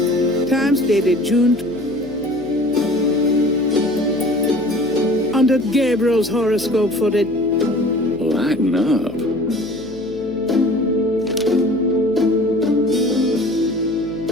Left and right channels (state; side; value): noise; left; hum, 19 dB below the sound